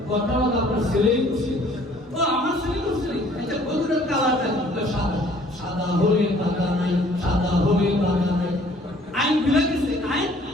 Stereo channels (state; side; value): normal; both; correlation 0.57